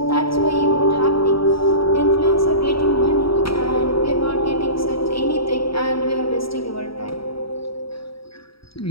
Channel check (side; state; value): right; late; 0.75 ms